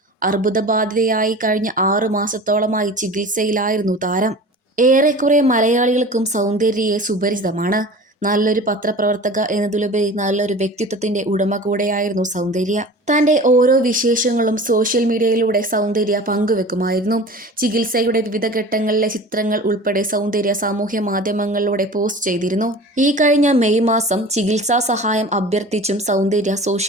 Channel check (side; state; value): both; normal; correlation 0.39